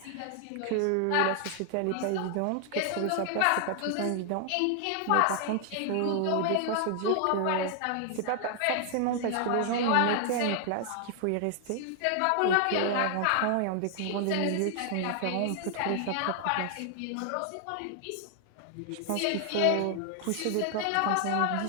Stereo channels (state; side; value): different; both; correlation 0.00